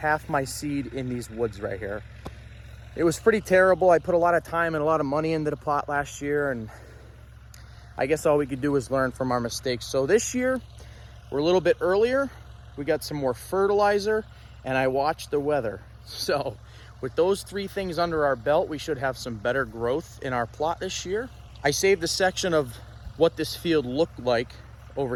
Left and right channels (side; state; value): both; identical; correlation 1.00